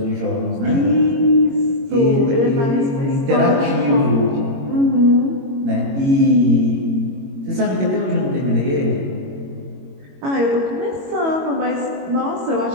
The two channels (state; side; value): late; left; 22 ms